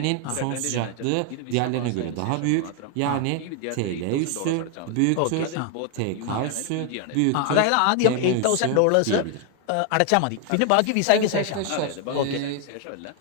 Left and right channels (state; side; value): different; both; correlation 0.00